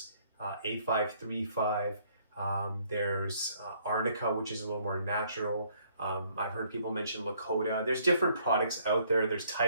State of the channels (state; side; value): inverted; both; correlation -0.65